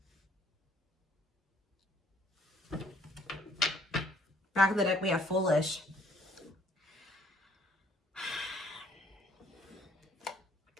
Back of the deck, we have foolish.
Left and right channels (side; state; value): both; normal; correlation 0.61